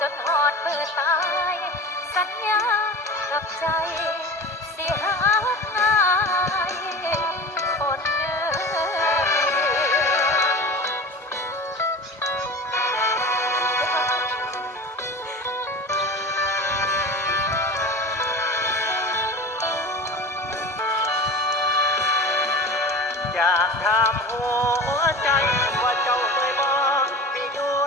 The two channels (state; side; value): normal; both; correlation 0.32